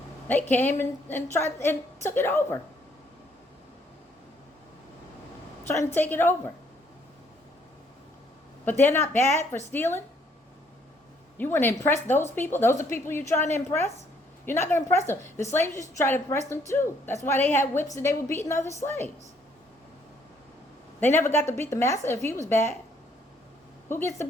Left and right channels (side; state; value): both; normal; correlation 0.66